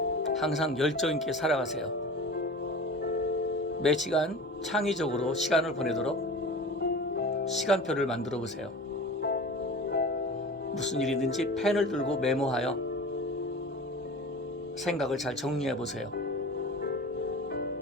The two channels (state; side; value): normal; both; correlation 0.36